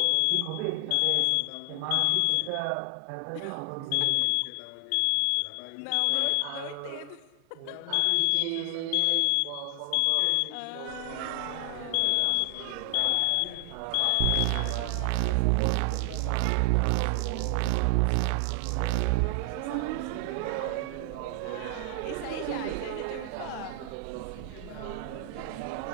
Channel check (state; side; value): different; both; correlation 0.00